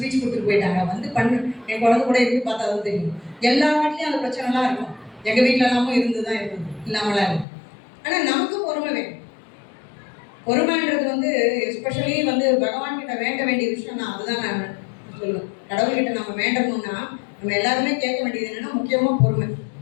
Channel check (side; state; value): right; drops out; at 7.5 s